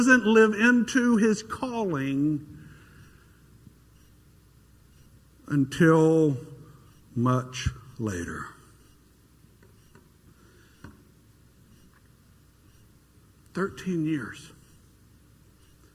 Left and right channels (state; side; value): identical; both; correlation 1.00